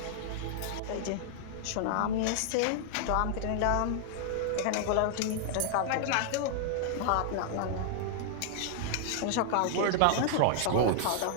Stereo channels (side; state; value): both; different; correlation -0.01